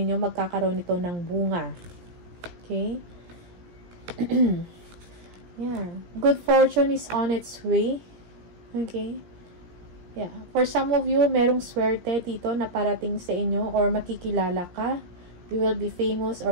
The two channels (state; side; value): late; left; 17 ms